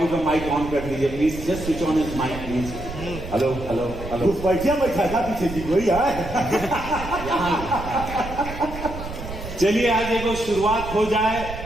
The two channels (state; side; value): noise; right; rumble, 10 dB below the sound